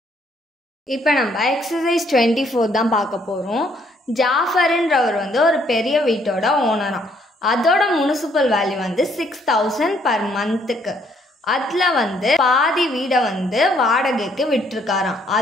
இப்போ நம்ம எக்ஸசைஸ் 24 தான் பார்க்க போகிறோம். ஜாஃபர்ன்றவர் வந்து ஒரு பெரிய வீட்டோட ஓனராம். அதோட முனிசிபல் வேல்யூ வந்து 6,000 per monthக்கு. அதில் வந்து பாதி வீடை வந்து வாடகைக்கு விட்டுருக்காராம்.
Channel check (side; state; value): both; normal; correlation 0.67